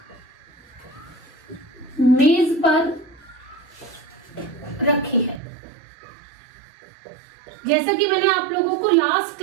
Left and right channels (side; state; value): left; drops out; at 5.4 s